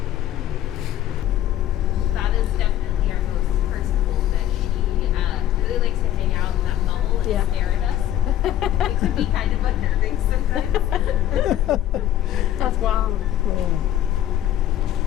That is definitely our most personable, that she really likes to hang out in that bubble and stare at us. It can be kind of unnerving sometimes. That's wild.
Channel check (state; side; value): quieter; right; 12.3 dB